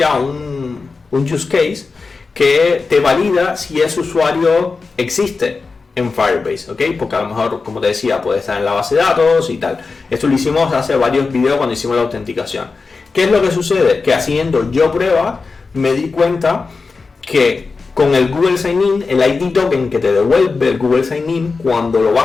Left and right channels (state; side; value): quieter; right; 4.3 dB